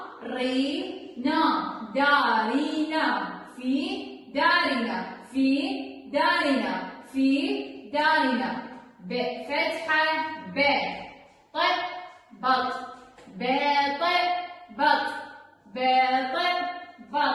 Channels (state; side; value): identical; both; correlation 1.00